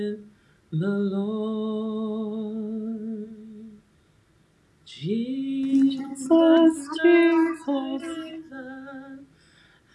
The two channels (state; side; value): identical; both; correlation 1.00